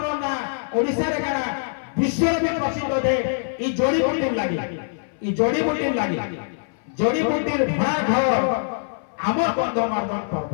ना ओडिसा रे काना विश्व में प्रसिद्ध दे ई जोड़ी बुटीर लागी जोड़ी बुटीर भड़ा घर आमर गंधमार्दन पर्व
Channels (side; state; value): right; silent; 58 dB below the other